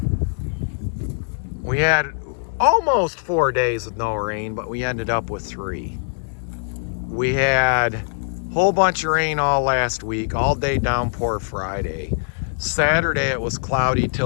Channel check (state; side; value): silent; right; 64 dB below the other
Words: almost 4 days with no rain, but we ended up with 3. We had a whole bunch of rain all last week, all day downpour Friday. Saturday it was cloudy